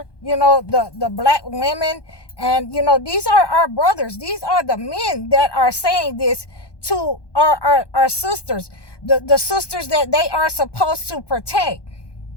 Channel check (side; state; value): right; late; 1.2 ms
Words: the black women. And, these are our brothers. These are the men that are saying this to our sisters, the sisters that they are supposed to protect.